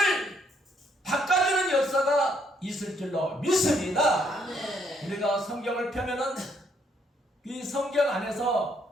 바꿔주는 역사가 있을 줄로 믿습니다. 우리가 성경을 펴면은 이 성경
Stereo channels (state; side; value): normal; both; correlation 0.70